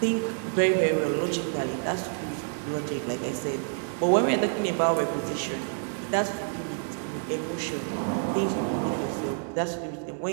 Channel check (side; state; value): left; silent; 59 dB below the other